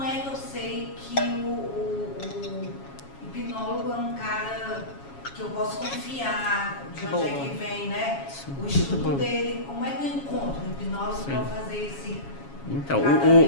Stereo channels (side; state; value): right; late; 7.3 ms